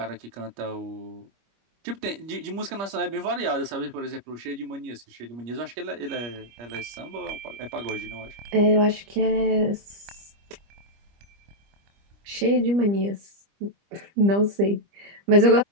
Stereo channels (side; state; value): left; late; 25 ms